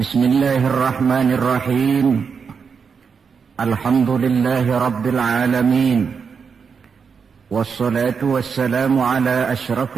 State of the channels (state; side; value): quieter; left; 6.0 dB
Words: Alhamdulillahi rabbil alamin. Wassalatu wassalamu ala